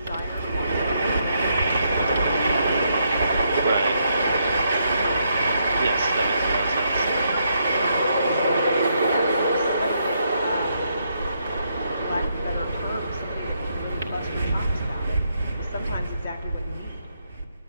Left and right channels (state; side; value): inverted; both; correlation -0.77